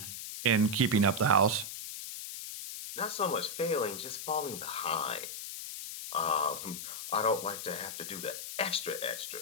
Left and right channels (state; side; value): noise; left; hiss, 8 dB below the sound